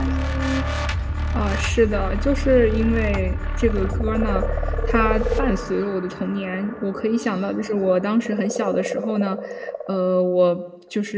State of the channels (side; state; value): both; identical; correlation 1.00